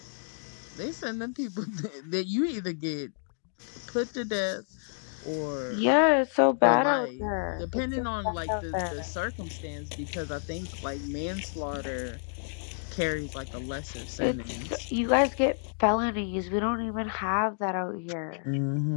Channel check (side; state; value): right; silent; digital silence